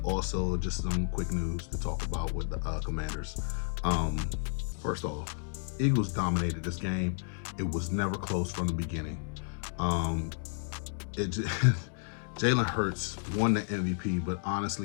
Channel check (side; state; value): right; silent; 56 dB below the other